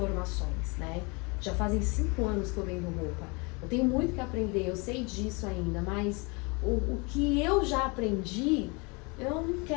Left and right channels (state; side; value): quieter; right; 29.6 dB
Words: né? Já fazem 5 anos que eu vendo roupa. Eu tenho muito que aprender, eu sei disso ainda, mas o que eu já aprendi, eu não